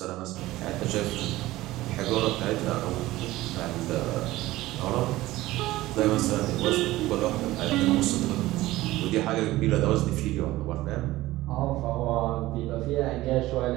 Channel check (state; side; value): quieter; left; 17.3 dB